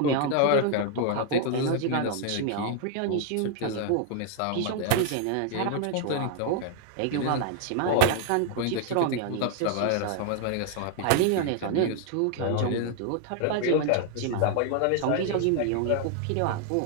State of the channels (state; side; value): different; both; correlation 0.00